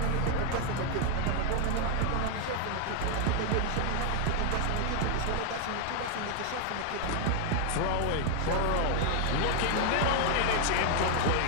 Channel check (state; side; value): different; both; correlation 0.00